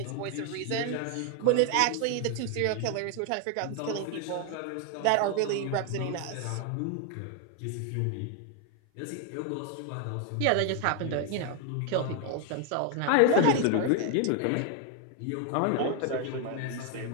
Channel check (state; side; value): different; both; correlation 0.01